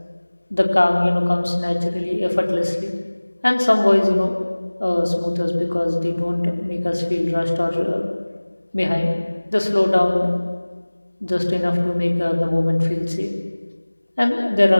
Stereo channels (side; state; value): both; inverted; correlation -1.00